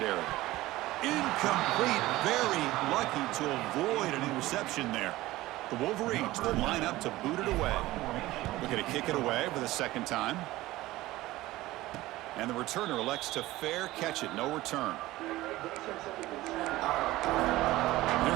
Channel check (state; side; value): quieter; left; 17.5 dB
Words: Incomplete. Very lucky to avoid an interception there. The Wolverines will line up to boot it away. Looking to kick it away for the 2nd time. And the returner elects to fair catch it. No return. Here